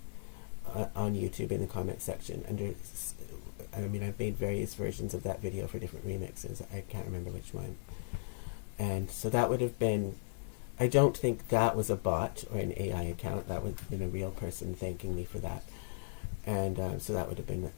on YouTube in the comment section. I mean, I've made various versions of that video for different remixes. I can't remember which one. And so that would have been. I don't think that was a bot or an AI account. That would have been a real person thanking me for that. And so that would have been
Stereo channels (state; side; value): silent; right; digital silence